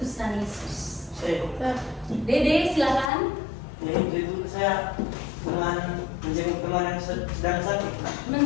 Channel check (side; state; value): right; drops out; at 3.1 s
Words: Yesus. Dede, silakan. Itu saya dengan menjenguk teman yang sedang sakit.